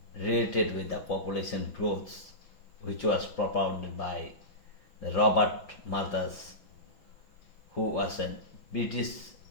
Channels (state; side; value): late; right; 6.0 ms